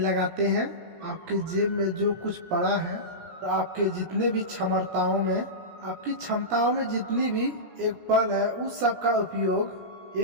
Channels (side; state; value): left; late; 17 ms